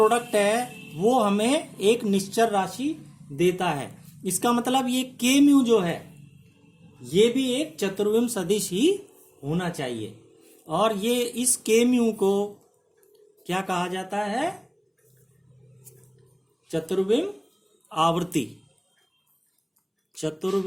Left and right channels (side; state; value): both; identical; correlation 1.00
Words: है वो हमें एक निश्चर राशि देता है। इसका मतलब ये के म्यू जो है ये भी एक चतुर्विम सदिश ही होना चाहिए। और ये इस के म्यू को क्या कहा जाता है, चतुर्विम आवृत्ति,